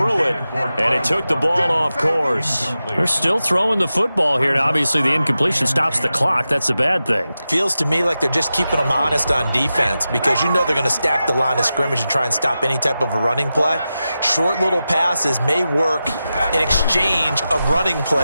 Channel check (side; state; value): both; inverted; correlation -0.92